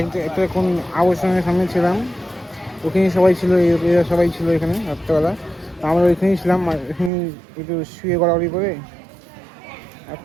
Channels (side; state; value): left; drops out; at 7.1 s